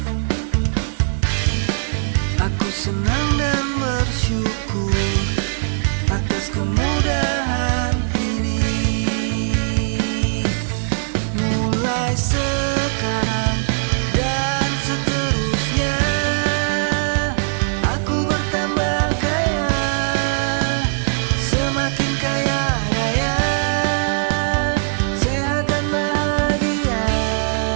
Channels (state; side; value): silent; left; digital silence